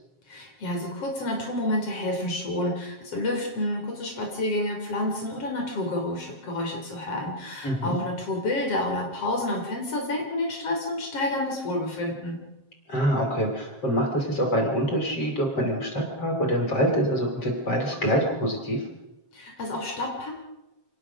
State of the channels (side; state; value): right; late; 7.5 ms